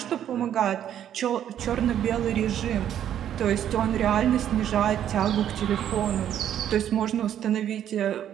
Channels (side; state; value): left; quieter; 10.3 dB